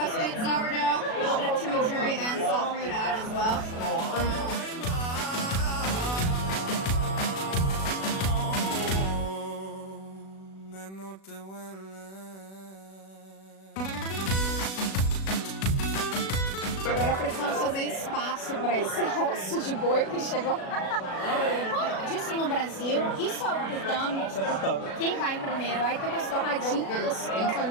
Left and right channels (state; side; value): late; right; 37 ms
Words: sourdough, a little bit of chimichurri and salt fruit out as well. Agora precisamos fazer espaço para esse osso de boi que chegou. Disso no Brasil, isso é o tutano. Quem vai primeiro? Aí tem umas torradinhas